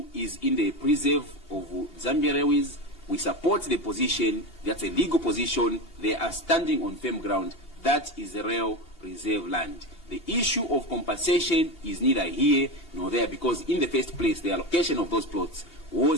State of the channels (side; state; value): right; late; 2.8 ms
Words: is in the preserve of Zambia Railways. We support the position. That's a legal position. They are standing on firm ground. That is the rail reserve land. The issue of compensation is neither here nor there, because in the first place, the allocation of those plots